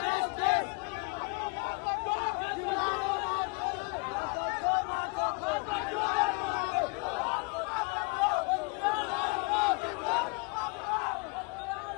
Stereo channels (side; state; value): right; quieter; 31.3 dB